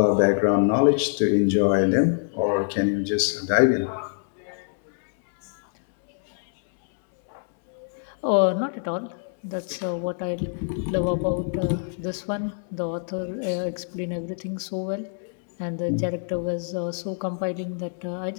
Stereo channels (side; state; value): right; silent; 62 dB below the other